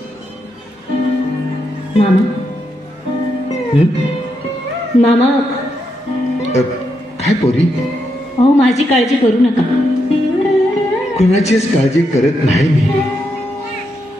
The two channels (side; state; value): both; normal; correlation 0.82